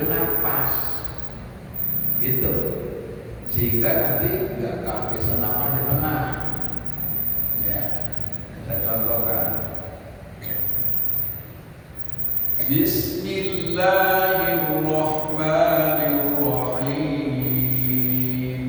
nafas. Gitu. Sehingga nanti nggak kehabisan nafas di tengah. Ya, kita contohkan. Bismillahirrahmanirrahim.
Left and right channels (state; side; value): identical; both; correlation 1.00